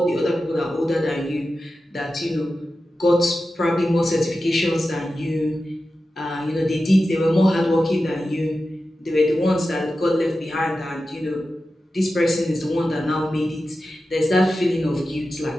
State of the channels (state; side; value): normal; both; correlation 0.93